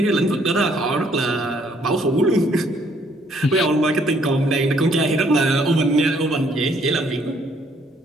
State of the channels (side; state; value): both; normal; correlation 0.66